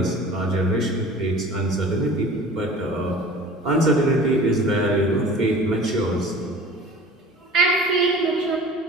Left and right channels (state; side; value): normal; both; correlation 0.42